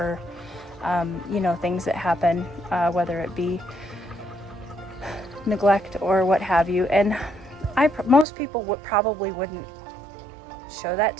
you know, things that happen, whether it be neglect or what have you. And most people probably wouldn't show that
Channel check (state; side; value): drops out; left; at 8.2 s